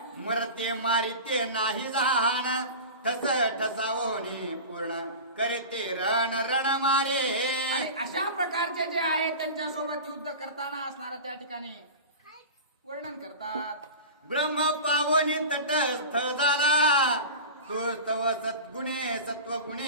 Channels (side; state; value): both; inverted; correlation -0.31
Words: मरते मारिते नाही जाण ठस ठसावोनी पूर्ण करते रण रण मारे. आणि अशा प्रकारचे जे आहेत त्यांच्यासोबत युद्ध करताना असणारा त्या ठिकाणी वर्णन करतात. ब्रह्म पावनी तटस्थ झाला तो तव सद्गुणे